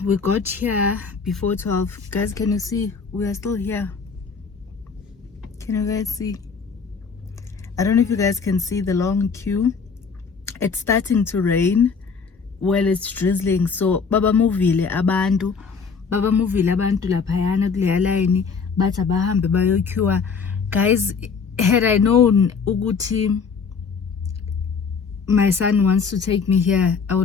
we got here before 12. Guys, can you see? We are still here. Can you guys see? I don't know if you guys can see the long queue. It's starting to rain. Well, it's drizzling. So, baba movile abantu laphayana kuleya line bathi abahambe bayoqueua. Guys, had I known ukuthi my son wants to take me here, I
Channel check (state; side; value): quieter; right; 5.5 dB